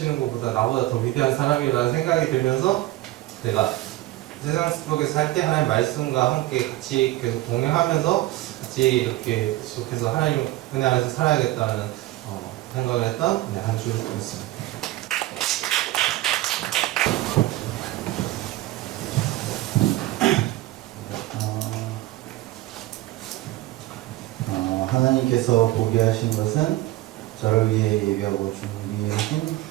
것보다 나보다 더 위대한 사람이라는 생각이 들면서 내가 세상 속에서 살 때 하나님 말씀과 함께 같이 계속 동행하면서 같이 이렇게 계속해서 하나님 은혜 안에서 살아야겠다는 생각을 했던 한 주였습니다. 하나님께서 보게 하신 것은 저를 위해 예비하고 준비하신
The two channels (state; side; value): quieter; left; 17.2 dB